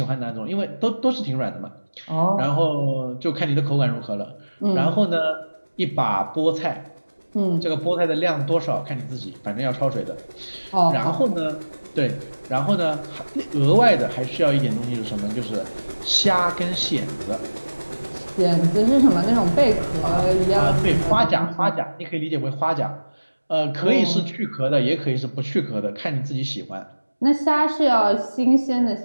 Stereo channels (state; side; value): inverted; both; correlation -1.00